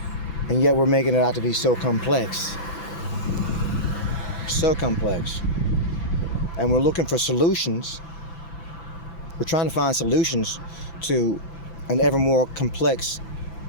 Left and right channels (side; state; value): right; late; 5.9 ms